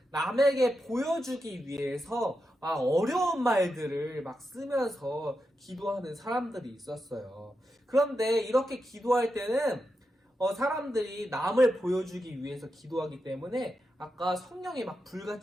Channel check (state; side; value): normal; both; correlation 0.87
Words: 남에게 보여주기 위해서 어려운 말들을 막 쓰면서 기도하는 사람들이 있었어요. 그런데 이렇게 기도할 때는 사람들이 남을 보여주기 위해서 기도하기 때문에 아까 성령이 막